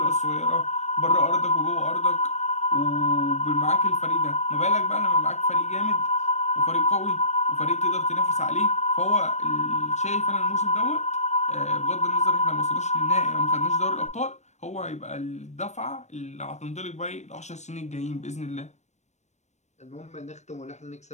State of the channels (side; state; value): right; late; 0.33 ms